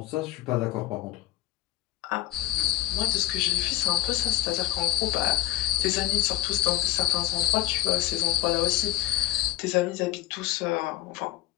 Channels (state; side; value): quieter; right; 15.0 dB